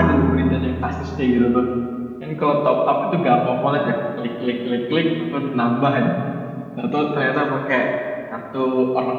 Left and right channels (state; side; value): identical; both; correlation 1.00